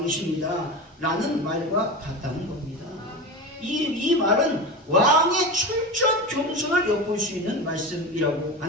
라는 말과 같다는 겁니다. 이 말은 왕의 철저한 겸손을 엿볼 수 있는 말씀이라고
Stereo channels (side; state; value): both; normal; correlation 0.24